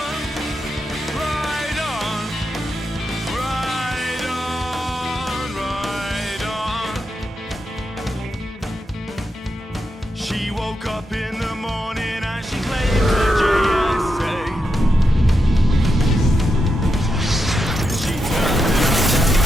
right on, right on. She woke up in the morning and she claimed her JSA. She turned it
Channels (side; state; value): both; normal; correlation 0.85